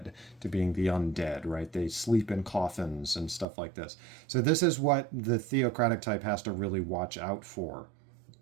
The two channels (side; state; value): left; drops out; at 3.5 s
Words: to being the undead, right? They sleep in coffins and stuff like this. So this is what the theocratic type has to really watch out for,